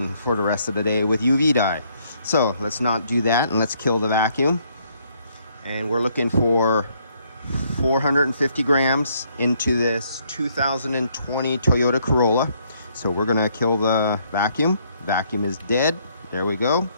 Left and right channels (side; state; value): both; inverted; correlation -0.70